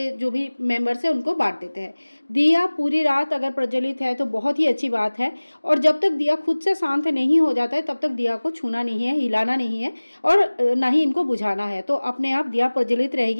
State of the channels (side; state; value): both; inverted; correlation -1.00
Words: जो भी मेंबर्स हैं उनको बांट देते हैं। दिया पूरी रात अगर प्रज्वलित है तो बहुत ही अच्छी बात है। और जब तक दिया खुद से शांत नहीं हो जाता है तब तक दिया को छूना नहीं है, हिलाना नहीं है और ना ही इनको बुझाना है। तो अपने आप दिया प्रज्वलित